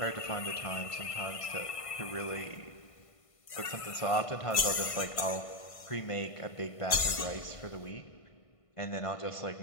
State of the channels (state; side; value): late; right; 1.5 ms